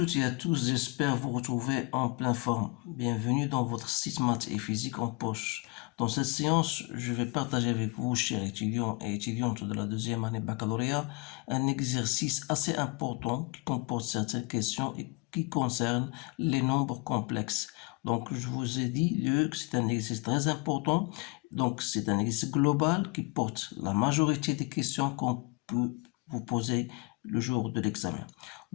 et à tous, j'espère vous retrouver en pleine forme. Bienvenue dans votre site maths et physique en poche. Dans cette séance, je vais partager avec vous, chers étudiants et étudiantes de la deuxième année baccalauréat, un exercice assez important qui comporte certaines questions et qui concerne les nombres complexes. Donc, je vous ai dit que c'est un exercice très important. Donc, c'est un exercice global qui porte la majorité des questions qu'on peut vous poser le jour de l'examen.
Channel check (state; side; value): quieter; right; 27.6 dB